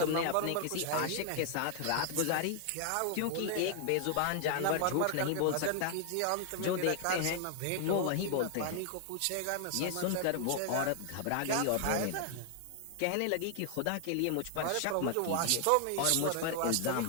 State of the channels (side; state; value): both; different; correlation 0.00